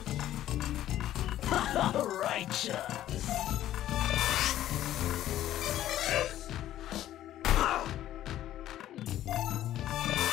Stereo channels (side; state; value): right; quieter; 12.9 dB